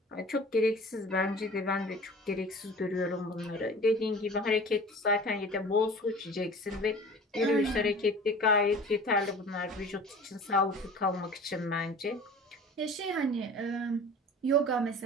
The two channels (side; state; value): both; normal; correlation 0.42